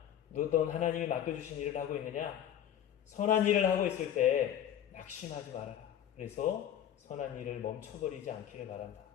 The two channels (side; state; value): right; quieter; 10.4 dB